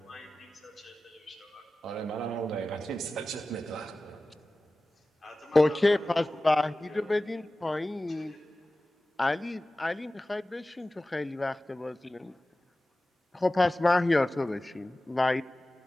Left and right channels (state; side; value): normal; both; correlation 0.96